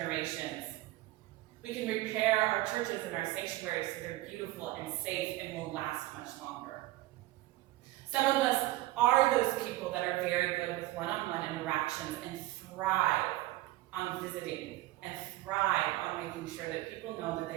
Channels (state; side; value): quieter; left; 17.6 dB